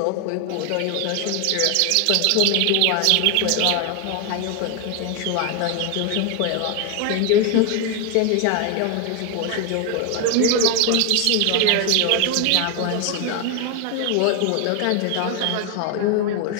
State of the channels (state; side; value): different; both; correlation 0.01